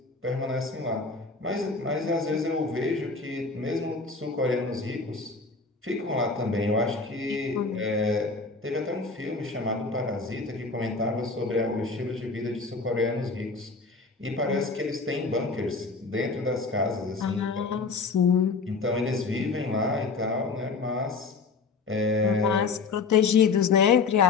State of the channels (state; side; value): quieter; right; 4.3 dB